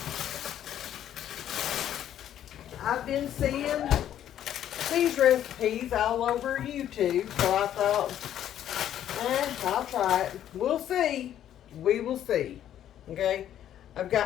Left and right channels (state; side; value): quieter; right; 10.9 dB